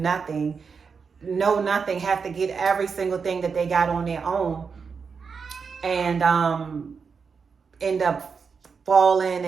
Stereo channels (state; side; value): quieter; left; 5.6 dB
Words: nothing, have to get every single thing that they got on their own, and end up falling